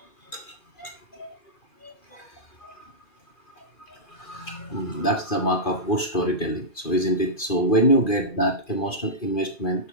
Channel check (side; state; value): right; late; 2.4 ms